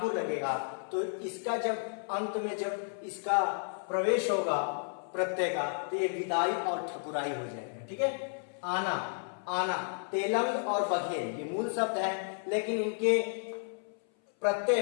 लगेगा तो इसका जब अंत में जब इसका प्रवेश होगा प्रत्यय का तो ये विदाई और ठकुराई हो जाएगा। ठीक है, आना, तेलंग और बघेल ये मूल शब्द हैं, लेकिन इनके प्रत्यय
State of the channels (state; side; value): silent; right; 56 dB below the other